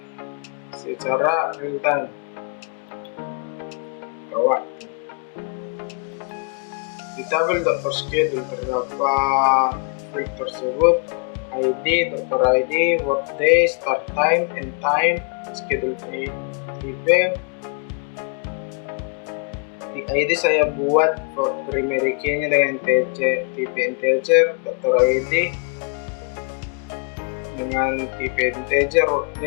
secara real time waktu. Di tabel dokter schedule terdapat field tersebut ID, dokter ID, workday, start time, end time, schedule tipe. Di ID saya buat primary key-nya dengan tipe integer, dokter ID dengan tipe integer,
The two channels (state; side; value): quieter; right; 39.1 dB